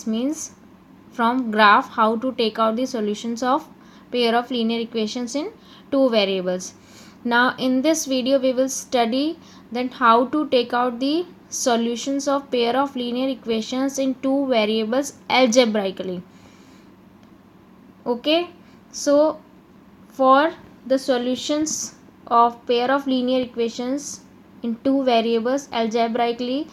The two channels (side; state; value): both; identical; correlation 1.00